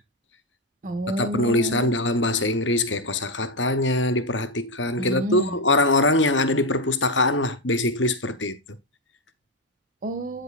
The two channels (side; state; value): both; normal; correlation 0.06